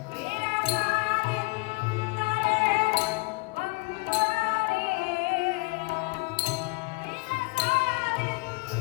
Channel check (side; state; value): right; quieter; 26.7 dB